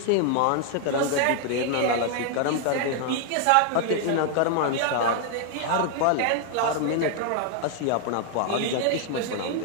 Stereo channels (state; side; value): different; both; correlation 0.00